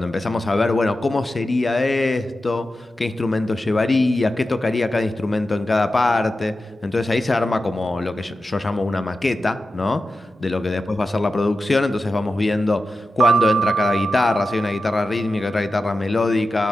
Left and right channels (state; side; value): normal; both; correlation 0.92